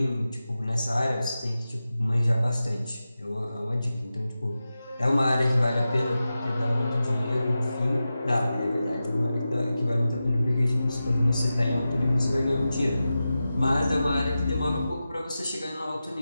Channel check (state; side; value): inverted; both; correlation -0.93